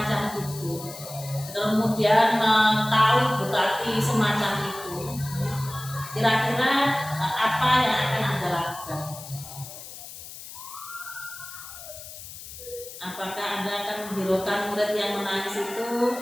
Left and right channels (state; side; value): noise; left; hiss, 13 dB below the sound